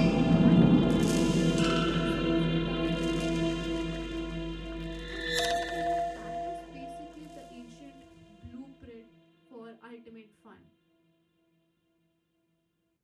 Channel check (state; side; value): identical; both; correlation 1.00